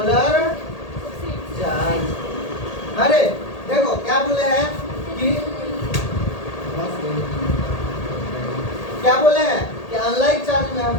charge। अरे देखो क्या बोले हैं कि क्या बोले हैं कि अनलाइक चार्ज में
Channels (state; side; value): late; right; 1.8 ms